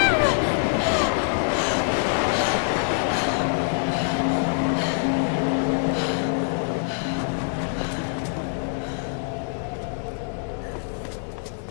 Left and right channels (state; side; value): silent; right; 62 dB below the other